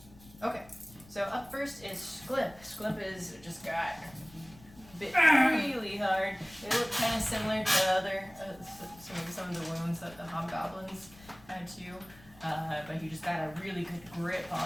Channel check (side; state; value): left; noise; rumble, 22 dB below the sound